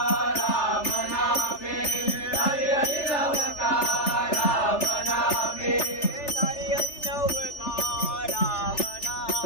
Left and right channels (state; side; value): late; right; 3.4 ms